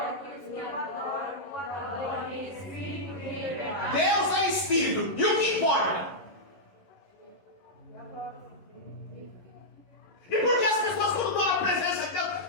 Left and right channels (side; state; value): right; late; 11 ms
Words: aqueles que adoram, o adoram em Espírito e em verdade. Deus é Espírito. E o que importa? E por que as pessoas, quando estão na presença de